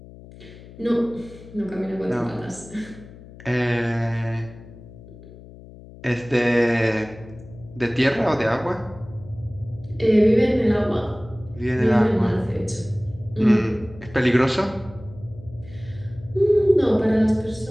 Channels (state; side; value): noise; left; hum, 18 dB below the sound